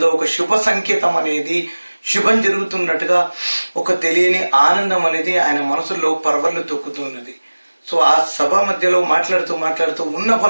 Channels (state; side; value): inverted; both; correlation -1.00